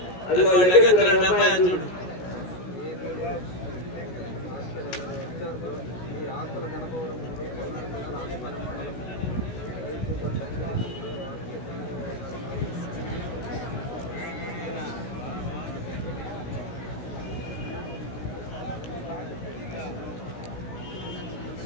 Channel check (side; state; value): right; late; 16 ms